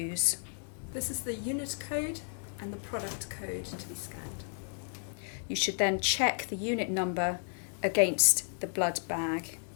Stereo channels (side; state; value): right; silent; 56 dB below the other